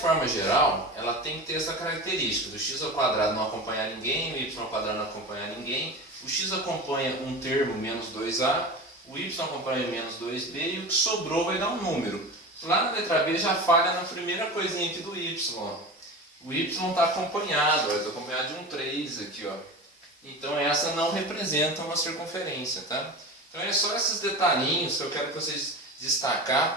geral, ela tem que ter essa característica do x ao quadrado não acompanhar ninguém, o y ao quadrado não acompanhar ninguém, o x acompanha um termo, menos 2a, o y acompanha menos 2b e o que sobrou vai dar um número. Lá na letra B já falha na primeira coisinha aqui do y. Ó. O y está acompanhado, está acompanhado de um 3 aqui, ó. Então essa não representa uma circunferência, tá? Então é só esses detalhinhos que eu quero que vocês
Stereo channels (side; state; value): both; normal; correlation 0.30